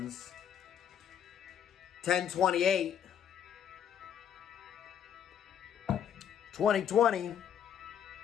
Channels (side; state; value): right; quieter; 9.0 dB